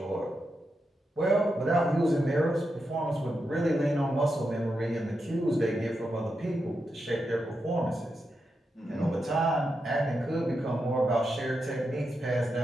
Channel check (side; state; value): both; normal; correlation 0.86